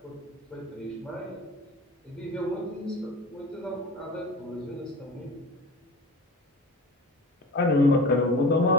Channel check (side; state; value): both; normal; correlation 0.35